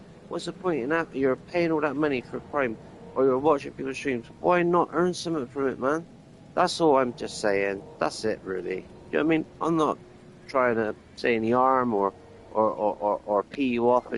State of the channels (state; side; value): identical; both; correlation 1.00